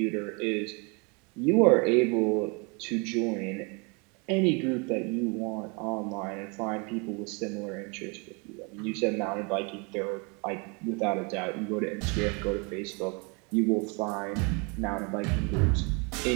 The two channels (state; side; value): quieter; left; 31.8 dB